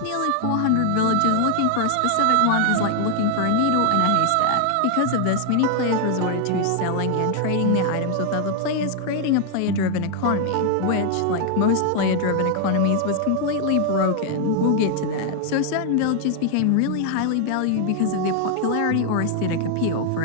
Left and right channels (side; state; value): both; different; correlation 0.00